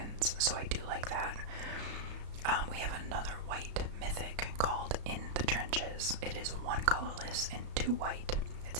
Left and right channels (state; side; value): late; left; 34 ms